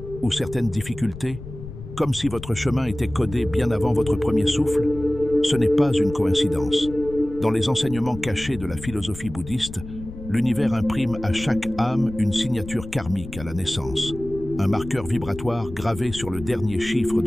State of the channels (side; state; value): left; noise; rumble, 13 dB below the sound